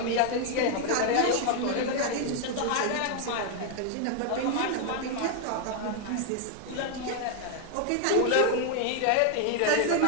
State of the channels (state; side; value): different; both; correlation 0.00